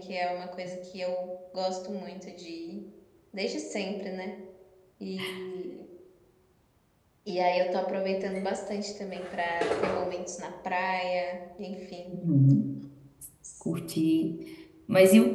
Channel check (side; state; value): both; identical; correlation 1.00